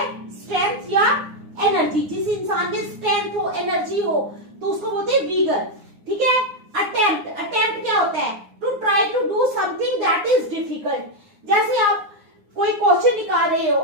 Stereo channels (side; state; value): left; late; 9.7 ms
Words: स्ट्रेंथ या एनर्जी। जिस इंसान में स्ट्रेंथ हो, एनर्जी हो, तो उसको बोलते हैं विगर। ठीक है। अटेम्प्ट। अटेम्प्ट क्या होता है? To try to do something that is difficult. जैसे आप कोई क्वेश्चन निकाल रहे हो,